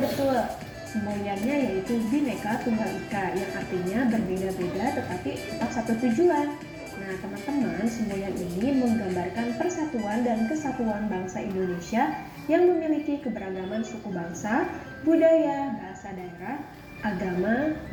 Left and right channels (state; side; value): identical; both; correlation 1.00